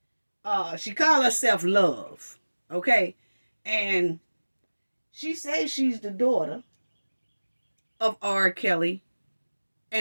she called herself Love, okay? And she says she's the daughter of R. Kelly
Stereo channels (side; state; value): both; inverted; correlation -1.00